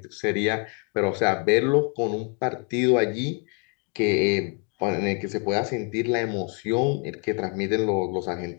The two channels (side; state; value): right; quieter; 35.2 dB